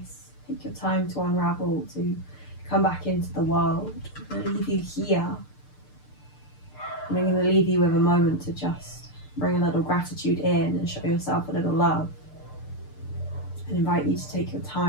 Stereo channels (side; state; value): right; late; 6.7 ms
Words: Take your time to unravel, to come back into the world. I'm going to leave you here. And I'm going to leave you with a moment to just bring a little gratitude in and show yourself a little love. And invite you to take your